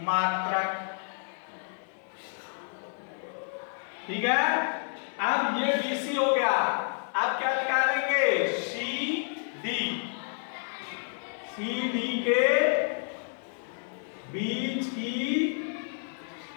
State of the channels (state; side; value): silent; right; 58 dB below the other